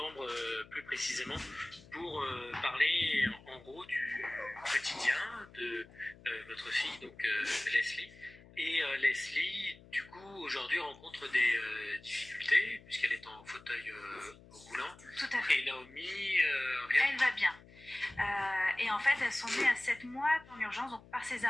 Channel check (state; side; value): noise; left; hum, 22 dB below the sound